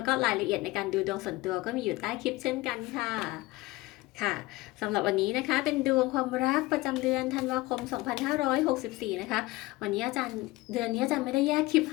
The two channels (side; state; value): right; quieter; 20.0 dB